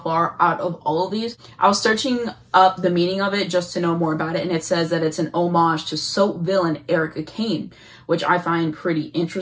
out of all of these. I was searching up the meaning of it just to know more about it, and it says that it's an homage to soap villain Erica Kane, which I find pretty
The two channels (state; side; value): identical; both; correlation 1.00